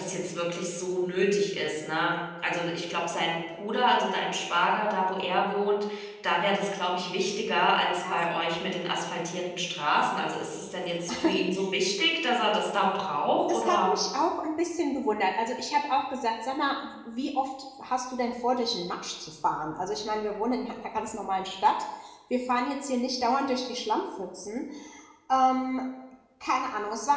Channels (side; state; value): both; identical; correlation 1.00